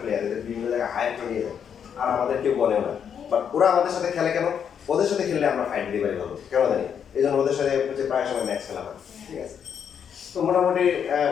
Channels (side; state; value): right; quieter; 7.9 dB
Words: প্লেয়ার, এদের বিভিন্ন জায়গায় হায়ার করে নিয়ে যায়, আর আমাদের কেউ বলেও না। বাট ওরা আমাদের সাথে খেলে কেন? ওদের সাথে খেললে আমরা ফাইট দিতে পারি ভালো, কেন জানি এই জন্য ওদের সাথে হচ্ছে প্রায় সময় ম্যাচ খেলা হয়, ঠিক আছে? তো মোটামুটি